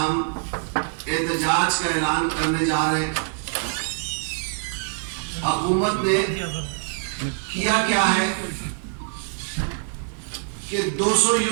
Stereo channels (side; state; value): left; silent; 62 dB below the other